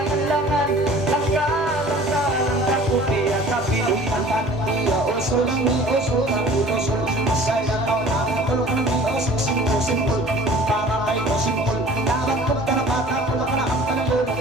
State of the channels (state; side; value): normal; both; correlation 0.47